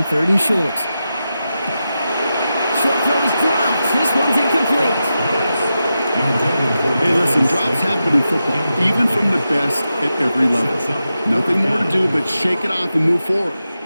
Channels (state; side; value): inverted; both; correlation -0.90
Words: 3rd and short. Short throw is dropped. This one's incomplete. Hey, listen, drops happen in football, even from the best at every level. Nothing more to do but shake it off and move forward,